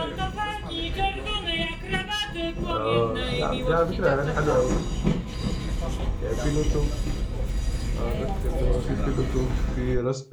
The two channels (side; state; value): both; identical; correlation 1.00